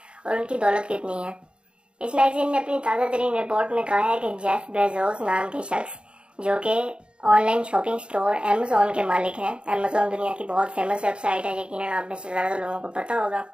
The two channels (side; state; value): left; late; 0.053 ms